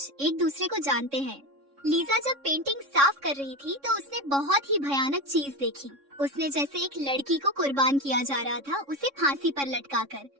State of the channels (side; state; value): left; late; 3.6 ms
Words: एक दूसरे को जानते हैं। लीजा जब पेंटिंग साफ कर रही थी तो उसने बहुत ही भयानक चीज देखी। उसने जैसे एक लड़की को कुर्बान किया जा रहा था, उसे फांसी पर लटकाकर।